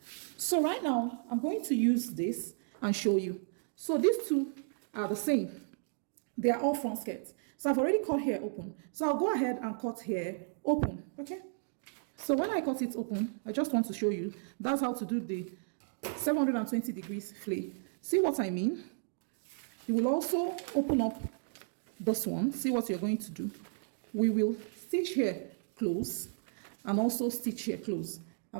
So right now I'm going to use this and show you. So these two are the same. They are all front skirts. So I've already cut here open. So I'll go ahead and cut here open. Okay, So when I cut it open, I just want to show you, that's how to do the 720 degrees flay. See what I mean? You will also open up this one. See what you're going to do. We will stitch here close and also stitch here close.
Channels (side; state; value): left; silent; digital silence